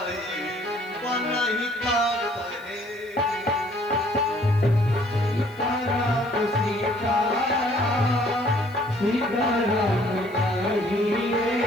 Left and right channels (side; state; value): right; noise; hiss, 27 dB below the sound